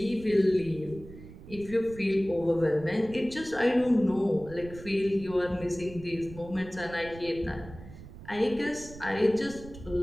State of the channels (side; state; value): right; noise; rumble, 16 dB below the sound